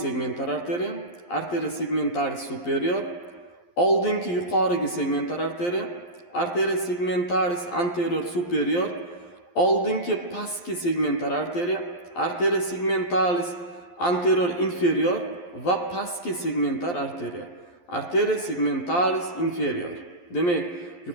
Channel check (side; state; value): right; late; 11 ms